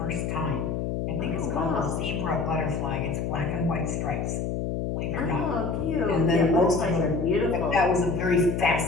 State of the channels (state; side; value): noise; left; hum, 1 dB below the sound